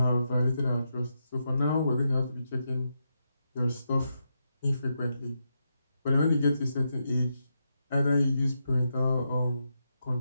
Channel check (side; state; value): both; inverted; correlation -0.84